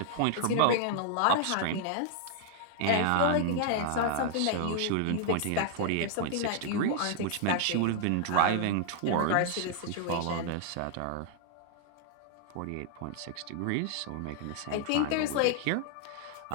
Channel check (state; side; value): different; both; correlation 0.00